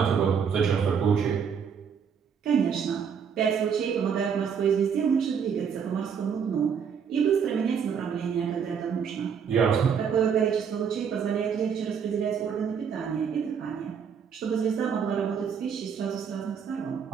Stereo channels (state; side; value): quieter; left; 7.0 dB